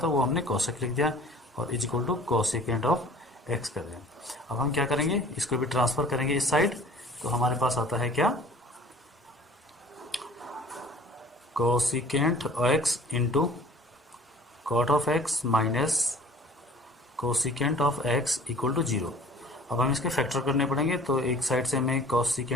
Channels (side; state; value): both; normal; correlation 0.48